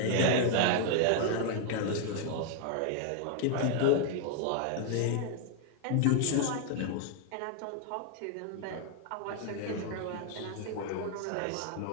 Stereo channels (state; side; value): different; both; correlation 0.00